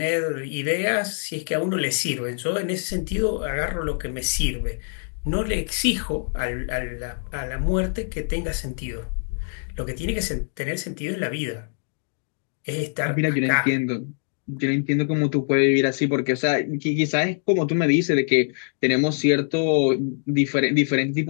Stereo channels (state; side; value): silent; right; 58 dB below the other